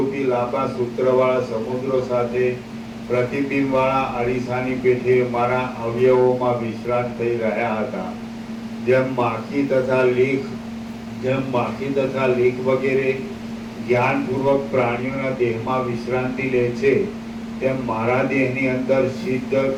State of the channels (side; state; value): both; identical; correlation 1.00